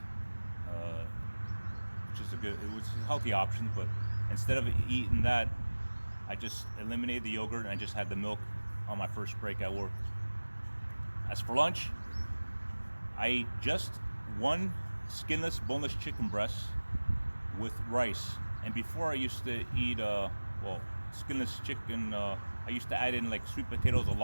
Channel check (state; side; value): inverted; both; correlation -1.00